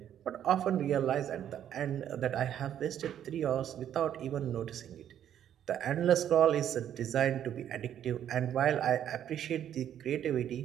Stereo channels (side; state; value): left; quieter; 10.2 dB